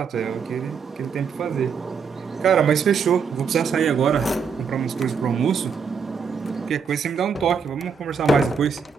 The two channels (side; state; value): left; quieter; 6.0 dB